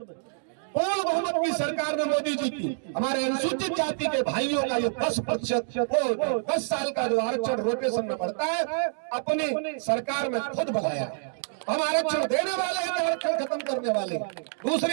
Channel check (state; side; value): silent; left; digital silence